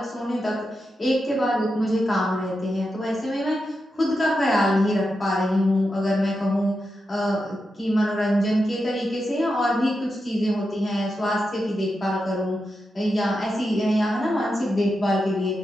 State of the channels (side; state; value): both; normal; correlation 0.88